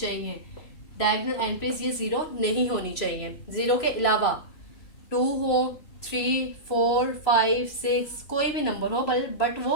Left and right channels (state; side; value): late; right; 3.0 ms